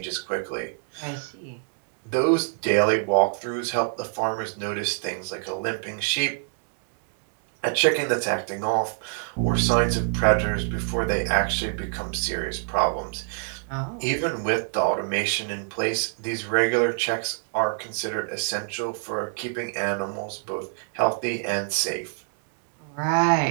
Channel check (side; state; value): left; silent; 61 dB below the other